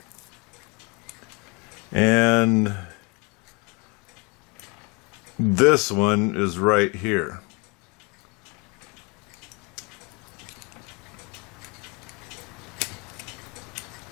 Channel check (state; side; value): quieter; right; 27.7 dB